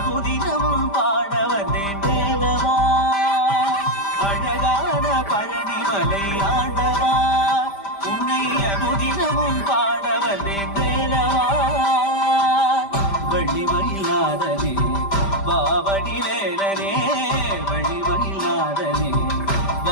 பாட வந்தேன் வேலவா. அழகான பழனிமலை ஆண்டவா, உன்னை அனுதினமும் பாட வந்தேன் வேலவா. வள்ளிமயிலாதனே பாவடி வேலனே, வள்ளிமயிலாதனே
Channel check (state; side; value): late; right; 5.0 ms